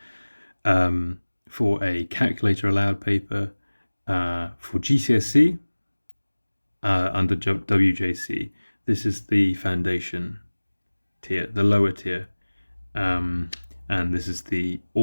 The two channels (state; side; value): inverted; both; correlation -1.00